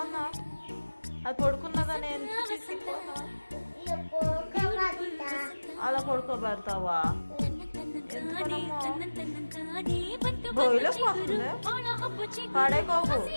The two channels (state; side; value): inverted; both; correlation -1.00